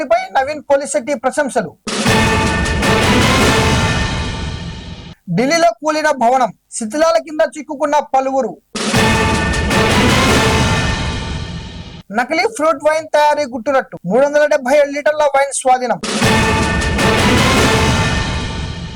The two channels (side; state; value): both; identical; correlation 1.00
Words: నవీన్ పోలిశెట్టి ప్రశంసలు. ఢిల్లీలో కూలిన భవనం, శిథిలాల కింద చిక్కుకున్న పలువురు. నకిలీ ఫ్రూట్ వైన్ తయారీ గుట్టురట్టు, 377 లీటర్ల వైన్ స్వాధీనం.